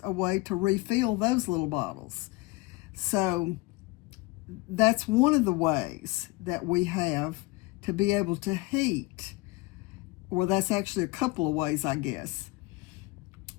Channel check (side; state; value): right; quieter; 21.2 dB